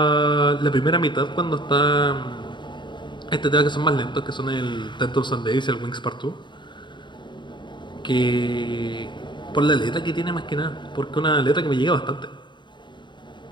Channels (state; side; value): late; right; 0.23 ms